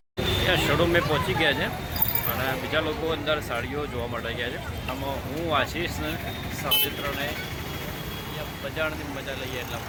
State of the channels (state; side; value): identical; both; correlation 1.00